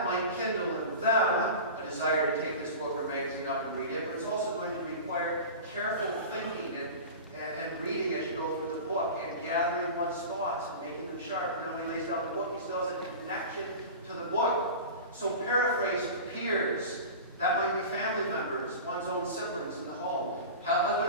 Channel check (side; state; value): both; inverted; correlation -0.32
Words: might kindle in them a desire to take this book or magazine up and read it, but it's also going to require careful thinking and reading as you go through the book and gathering one's thoughts and making them sharp. And then when he lays down the book, he still has a connection to the book. So paraphrase to peers. That might be family members, one's own siblings in the home, husband